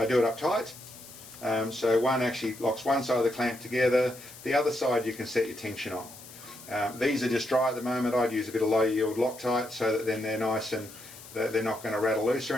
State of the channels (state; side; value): noise; left; hiss, 17 dB below the sound